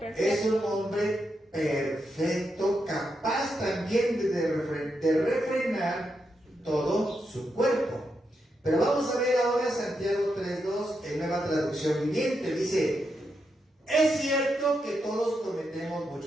un hombre perfecto, capaz también de refrenar todo su cuerpo. Pero vamos a ver ahora Santiago 3:2 en Nueva Traducción Viviente. Dice, es cierto que todos cometemos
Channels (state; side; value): normal; both; correlation 0.84